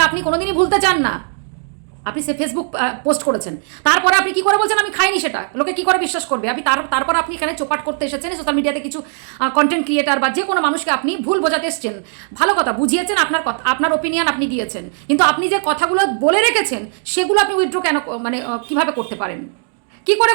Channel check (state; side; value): silent; left; 58 dB below the other